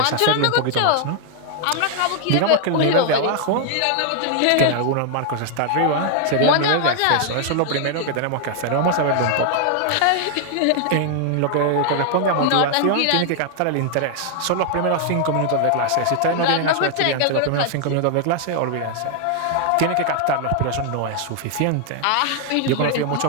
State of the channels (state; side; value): different; both; correlation 0.00